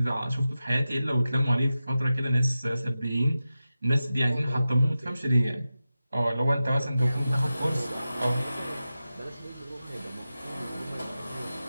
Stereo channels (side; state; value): both; inverted; correlation -0.93